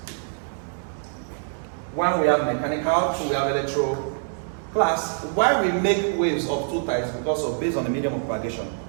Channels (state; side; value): silent; left; 62 dB below the other